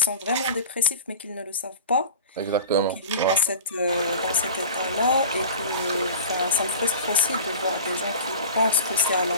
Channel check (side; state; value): both; inverted; correlation -0.36